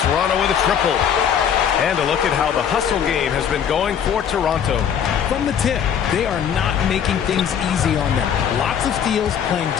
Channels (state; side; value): quieter; right; 8.3 dB